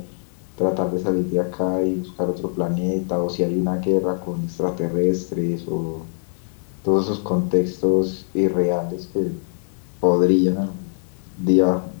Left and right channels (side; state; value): right; silent; digital silence